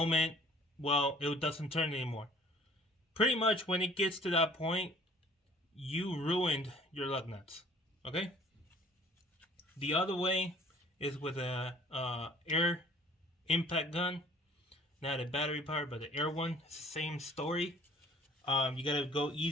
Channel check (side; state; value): both; normal; correlation 0.54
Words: well, it doesn't turn anymore. Pretty much when it gets to that point, you ruined your lug nuts. Okay? The other way is with a air impact gun. Not a battery powered, but the air one. It's the same story. You gotta go